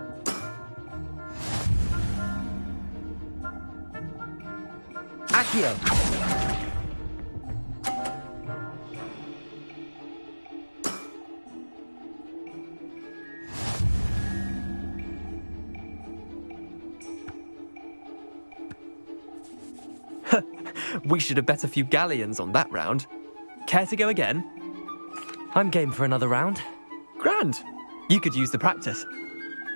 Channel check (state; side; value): inverted; both; correlation -1.00